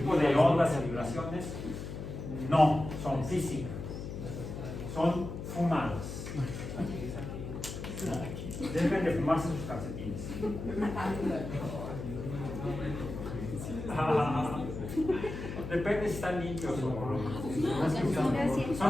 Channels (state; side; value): noise; left; hum, 7 dB below the sound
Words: de ondas de vibraciones no son físicas, son fumadas. Deben de fumarse sus calcetines. Depende si están limpios o